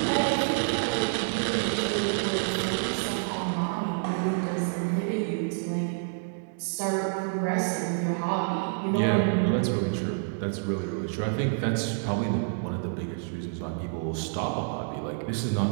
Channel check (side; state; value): left; silent; digital silence